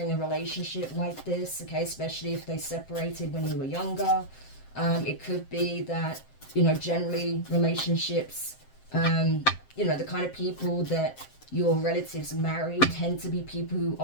a relationship like this, okay? Especially if they separated when you were younger. It could be that, you know, generally relationships, you know, the kind of people that your relatives marry tend to be people who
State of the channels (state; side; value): late; right; 7.6 ms